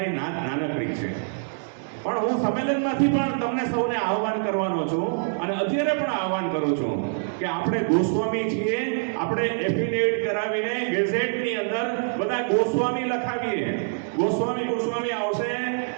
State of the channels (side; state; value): left; silent; digital silence